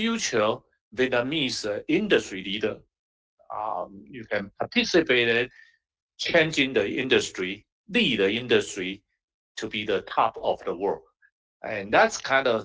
Vietnamese industry leader. You can participate in changing the industry, lead the industry to be the top of the world. And that's kind of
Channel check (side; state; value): both; identical; correlation 1.00